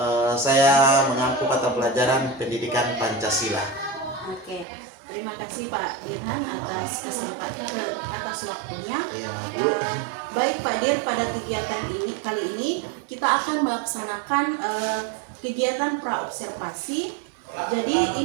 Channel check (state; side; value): drops out; left; at 4.7 s